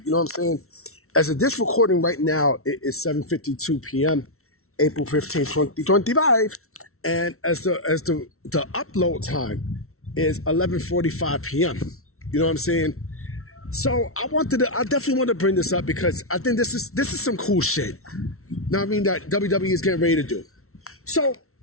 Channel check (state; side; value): late; right; 0.63 ms